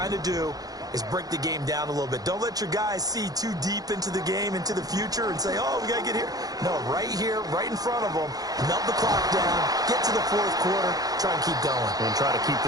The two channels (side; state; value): left; late; 0.18 ms